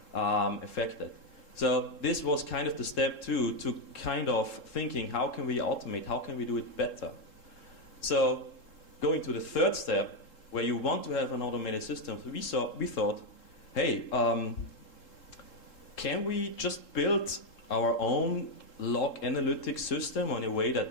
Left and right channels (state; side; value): late; right; 3.7 ms